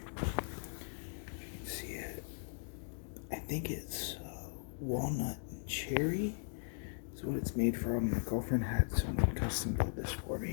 If you can see it, I think it's walnut and cherry is what it's made from. My girlfriend had someone custom build this for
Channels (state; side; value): silent; right; digital silence